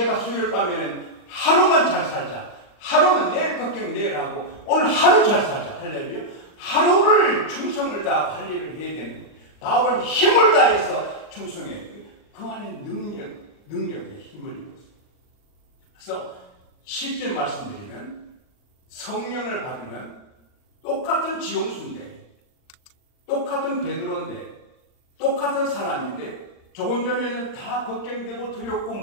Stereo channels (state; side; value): late; right; 39 ms